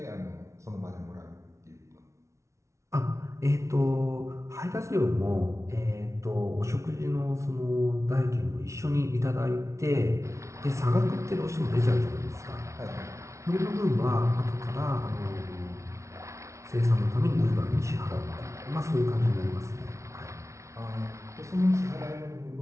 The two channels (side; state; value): left; late; 0.14 ms